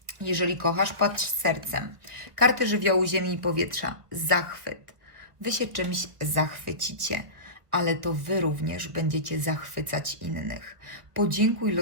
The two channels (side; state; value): left; late; 1.4 ms